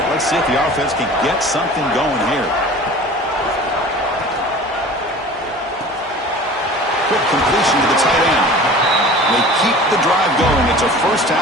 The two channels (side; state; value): both; normal; correlation 0.41